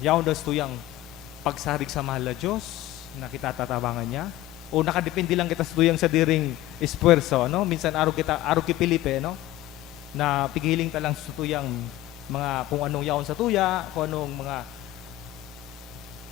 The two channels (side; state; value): right; quieter; 15.2 dB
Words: Yaon daw sa tuyang pagsarig sa mahal na Diyos, na kita tatabangan niya, o nakadepende lang kita sa tuyang sa diring espuerso. Ano? Minsan, araw ki Pilipe, no? Na pigiling ta lang sa tuyang mga, kung anong yaon sa tuya, kung anong mga